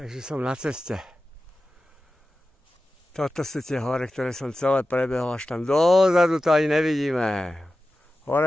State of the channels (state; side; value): normal; both; correlation 0.94